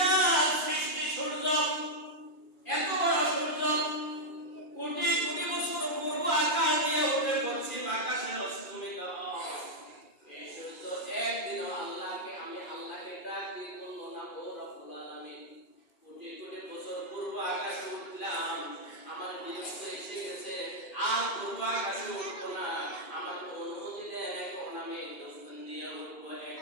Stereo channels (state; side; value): late; right; 2.4 ms